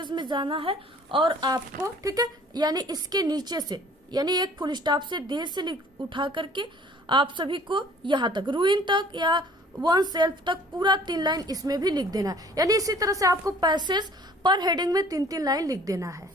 में जाना है, और आपको, ठीक है, यानी इसके नीचे से, यानी एक फुल स्टॉप से देर से उठा करके आप सभी को यहाँ तक रूइन तक या वन सेल्फ तक पूरा 3 लाइन इसमें भी लिख देना है, यानी इसी तरह से आपको पैसेज पर हेडिंग में 3-3 लाइन लिख देना है। इस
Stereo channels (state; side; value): normal; both; correlation 0.52